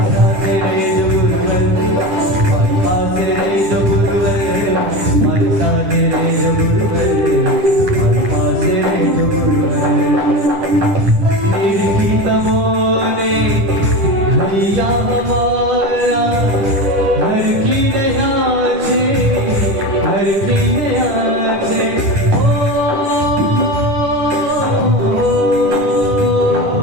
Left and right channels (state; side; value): late; left; 10 ms